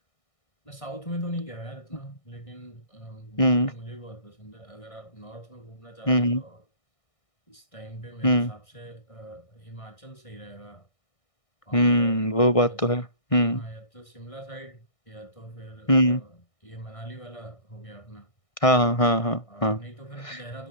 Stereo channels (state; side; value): late; right; 1.6 ms